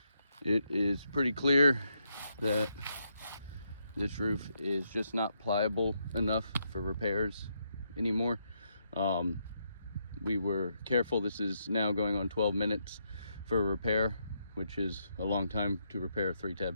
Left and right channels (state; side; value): inverted; both; correlation -0.79